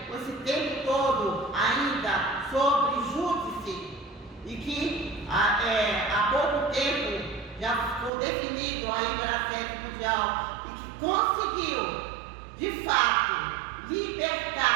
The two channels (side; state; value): left; drops out; at 8.1 s